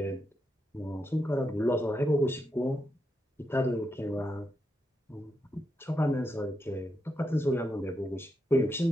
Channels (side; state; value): both; normal; correlation 0.84